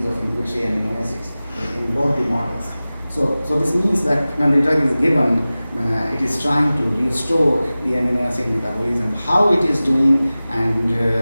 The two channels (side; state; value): both; inverted; correlation -0.97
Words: of inhibitory amino acids in both the models. So this means that when the drug is given, it is trying to restore the amino acid metabolism. How it is doing, and